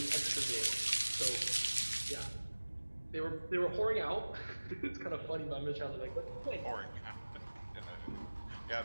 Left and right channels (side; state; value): both; inverted; correlation -1.00